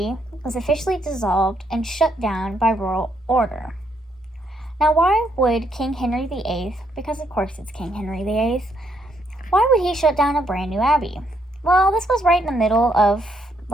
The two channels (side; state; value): both; normal; correlation 0.74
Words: was officially dissolved and shut down by royal order. Now, why would King Henry VIII, because of course it's King Henry VIII, why would he shut down a brand new abbey? Well, this was right in the middle of,